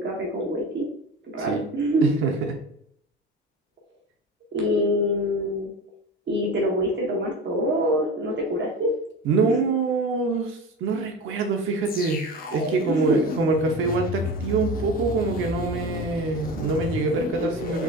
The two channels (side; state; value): both; normal; correlation 0.31